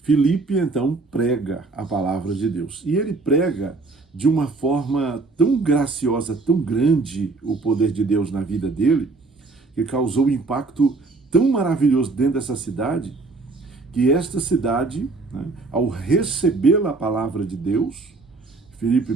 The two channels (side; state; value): left; quieter; 3.7 dB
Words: Filipe, então, prega a palavra de Deus. E ele prega de uma forma tão graciosa, tão grande o poder de Deus na vida dele, que causou um impacto tão maravilhoso dentro dessa cidade, que esta cidade, né, ao receber a palavra de Deus, Filipe